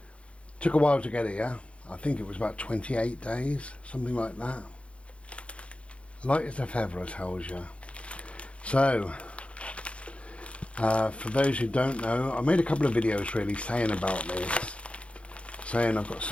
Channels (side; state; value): right; late; 0.061 ms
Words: Took a while to get here. I think it was about 28 days, something like that. Light as a feather, I tells you. So, for those who don't know, I made a couple of videos really saying about this, saying I've got